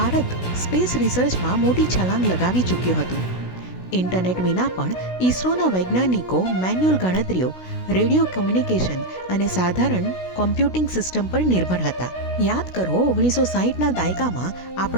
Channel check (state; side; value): late; right; 16 ms